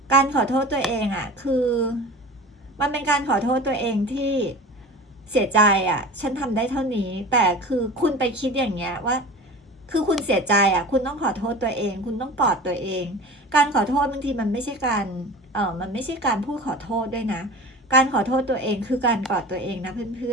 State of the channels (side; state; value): both; normal; correlation 0.36